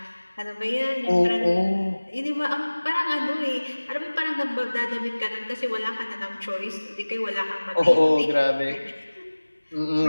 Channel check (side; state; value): both; inverted; correlation -1.00